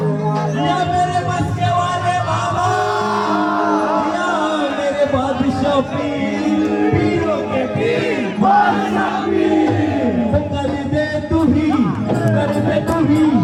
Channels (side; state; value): both; identical; correlation 1.00